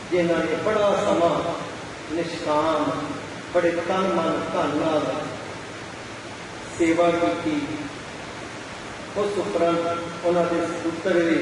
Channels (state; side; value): identical; both; correlation 1.00